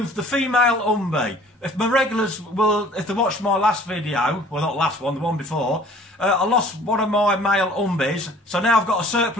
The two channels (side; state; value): both; normal; correlation 0.52